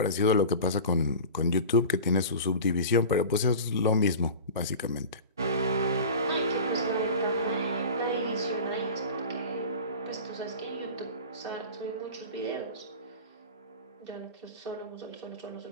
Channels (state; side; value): inverted; both; correlation -0.34